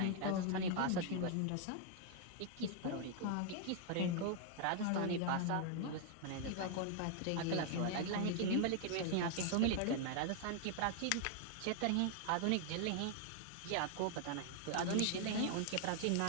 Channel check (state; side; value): different; both; correlation 0.00